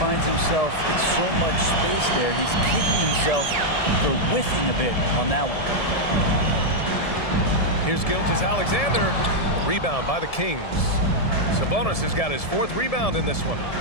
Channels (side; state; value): right; late; 1.7 ms